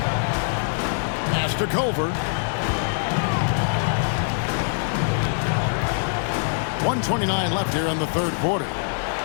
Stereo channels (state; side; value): silent; right; digital silence